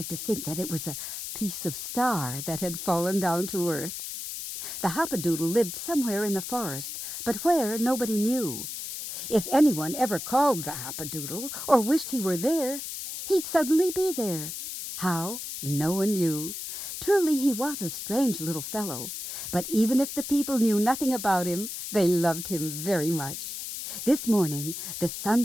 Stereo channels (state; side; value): noise; left; hiss, 7 dB below the sound